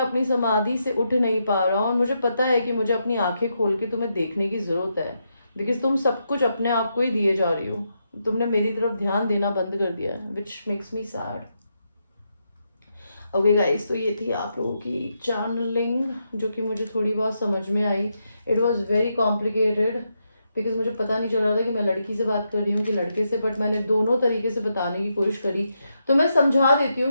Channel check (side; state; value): both; inverted; correlation -0.82